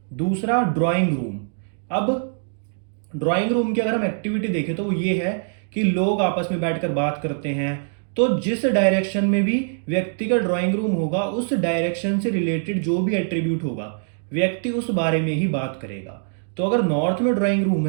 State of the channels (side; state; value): left; silent; digital silence